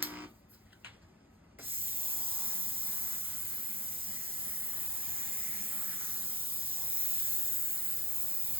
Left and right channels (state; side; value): normal; both; correlation 0.40